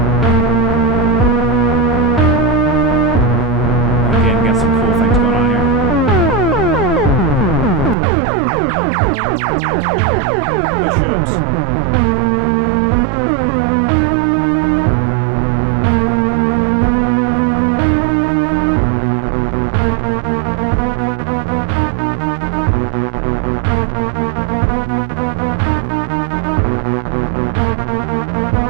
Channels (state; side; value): drops out; left; at 8.0 s